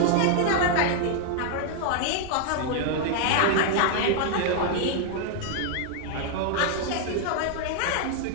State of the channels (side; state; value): both; different; correlation 0.00